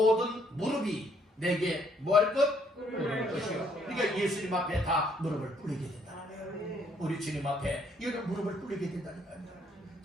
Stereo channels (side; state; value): both; normal; correlation 0.68